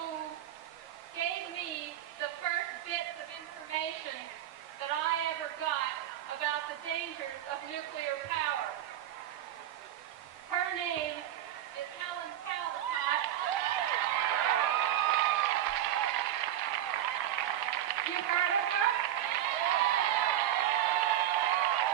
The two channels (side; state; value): left; quieter; 12.0 dB